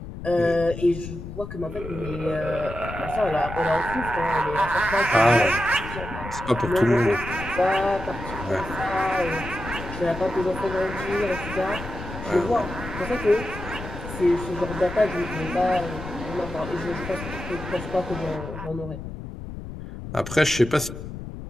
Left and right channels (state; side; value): noise; left; rumble, 10 dB below the sound